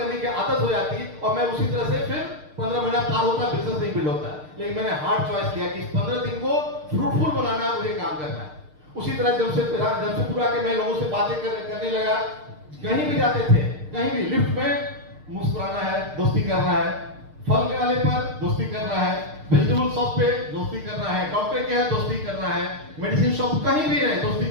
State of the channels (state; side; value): late; left; 6.6 ms